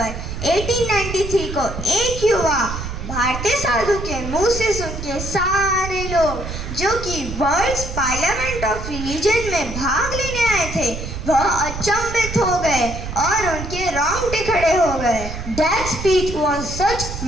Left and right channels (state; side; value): noise; right; rumble, 7 dB below the sound